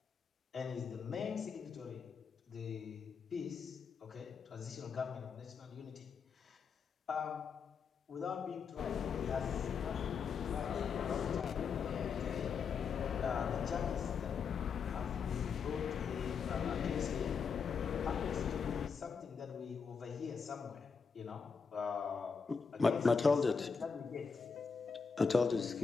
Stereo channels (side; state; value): right; quieter; 5.7 dB